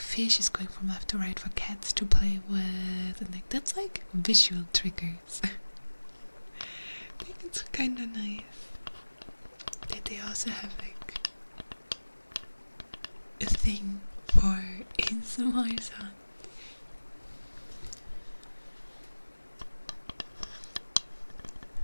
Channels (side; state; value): both; inverted; correlation -1.00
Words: is going from left to right for cats to play with, mouth, and like that's like visual triggers. I think it's kind of nice that they also have like a thing for ASMR sound.